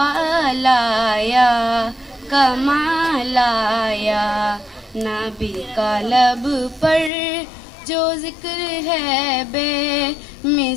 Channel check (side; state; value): right; drops out; at 7.1 s